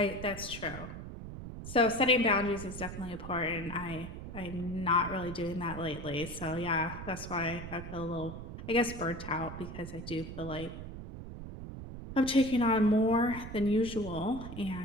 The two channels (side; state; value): right; noise; rumble, 10 dB below the sound